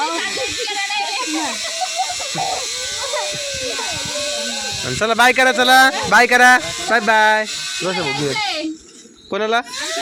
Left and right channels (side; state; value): both; identical; correlation 1.00